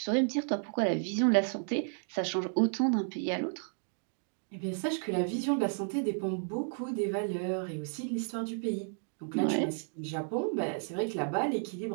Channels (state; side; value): silent; left; 56 dB below the other